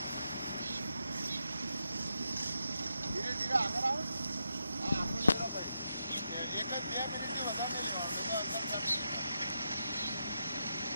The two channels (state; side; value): inverted; both; correlation -0.85